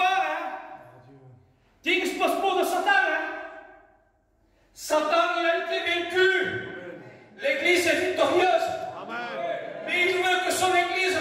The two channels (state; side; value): identical; both; correlation 1.00